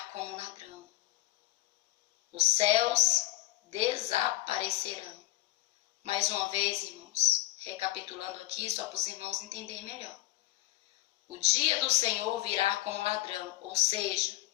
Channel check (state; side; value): quieter; right; 17.4 dB